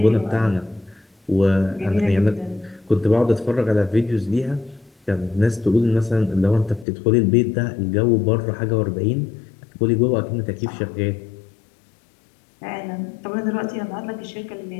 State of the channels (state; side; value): drops out; right; at 6.9 s